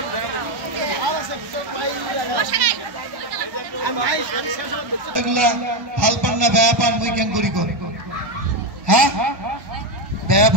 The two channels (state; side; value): late; left; 1.1 ms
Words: পান না বেয়া পান মুই কেন করি কর হ্যাঁ বেয়া